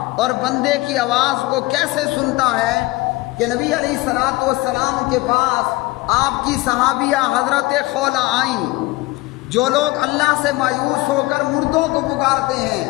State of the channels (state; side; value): quieter; right; 21.0 dB